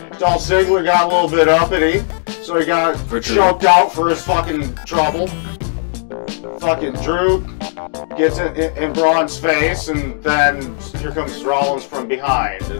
Dolph Ziggler got a little bit uppity, so he got choked out for his fucking trouble. Fucking Drew gets it in Braun's face, and then here comes Rollins from behind,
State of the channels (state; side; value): silent; right; digital silence